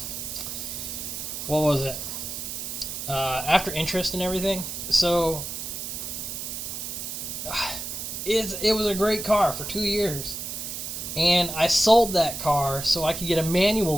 was it? After interest and everything. So, it was a great car for 2 years. And I sold that car so I could get a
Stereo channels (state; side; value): noise; right; hiss, 6 dB below the sound